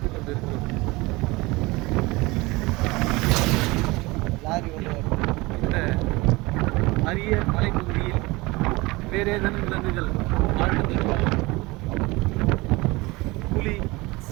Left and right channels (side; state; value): left; quieter; 22.8 dB